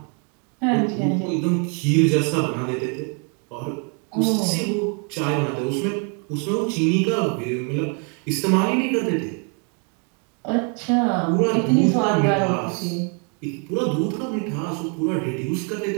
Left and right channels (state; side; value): quieter; left; 37.5 dB